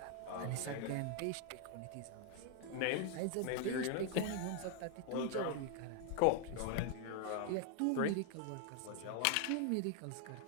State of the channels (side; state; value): both; different; correlation 0.01